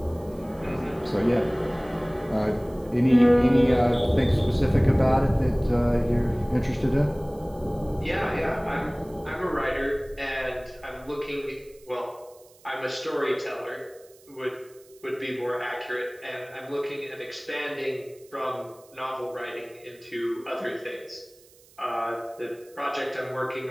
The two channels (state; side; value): noise; right; hiss, 27 dB below the sound